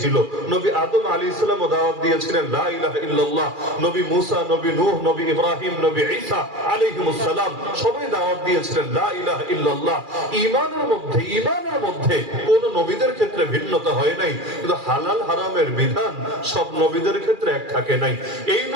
নবী আদম আলাইহিস সালাম দাওয়াত দিয়েছিলেন লা ইলাহা ইল্লাল্লাহ। নবী মুসা, নবী নূহ, নবী ইব্রাহিম, নবী ঈসা আলাইহিমুস সালাম সবাই দাওয়াত দিয়েছিলেন লা ইলাহা ইল্লাল্লাহ। ঈমানের মধ্যে কোন নবীদের ক্ষেত্রে ভিন্নতা হয় নাই, কিন্তু হালাল হারামের বিধান সব নবীদের ক্ষেত্রে এক থাকে নাই। এই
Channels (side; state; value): left; late; 2.4 ms